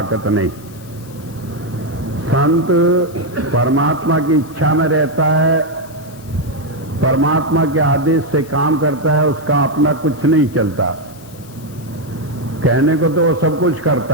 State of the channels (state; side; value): noise; left; hiss, 24 dB below the sound